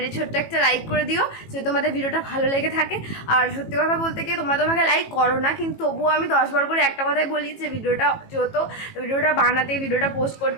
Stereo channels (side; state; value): right; late; 18 ms